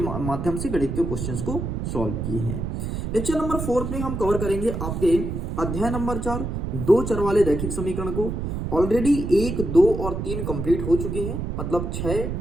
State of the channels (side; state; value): right; noise; rumble, 4 dB below the sound